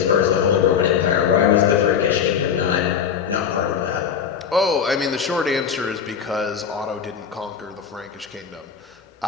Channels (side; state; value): right; quieter; 7.4 dB